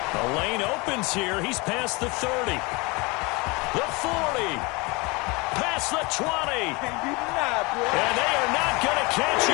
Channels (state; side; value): quieter; right; 26.4 dB